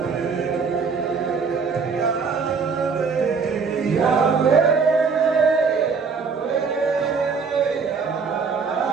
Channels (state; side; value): quieter; left; 5.3 dB